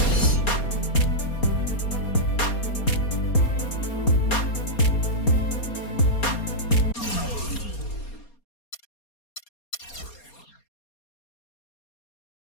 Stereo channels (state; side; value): late; right; 4.3 ms